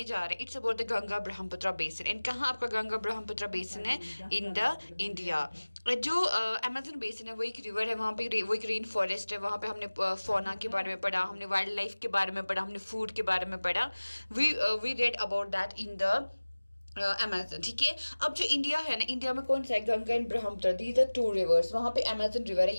जा रहे हैं, it's about the Ganga Brahmaputra basin. And कहाँ आपका गंगा ब्रह्मपुत्र बेसिन है? In the India. जो अमेजन बेसिन है वो एक रिवर है, वहाँ पे वो एक रेन फॉरेस्ट है। वहाँ पे हमने फौना के बारे में पढ़ा, हमने वाइल्ड लाइफ के बारे में पढ़ा, हमने फूड के बारे में पढ़ा। We read about that in the Amazon. ठीक है। अब जो इंडिया है ना, इंडिया में कौन सा है? Ganga and Brahmaputra, these are two rivers. वहां पे अमेजन रिवर है,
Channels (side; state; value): both; inverted; correlation -1.00